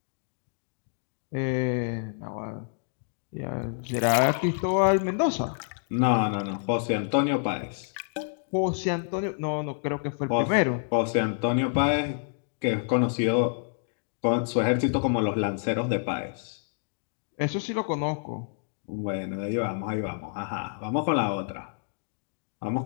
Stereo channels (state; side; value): silent; right; digital silence